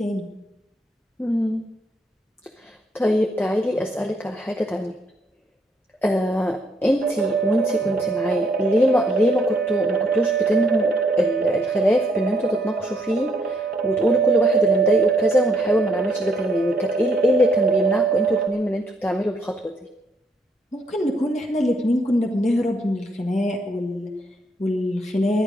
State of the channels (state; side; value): normal; both; correlation 0.71